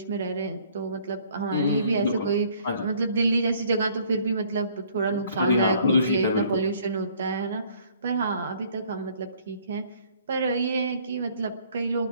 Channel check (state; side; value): inverted; both; correlation -0.59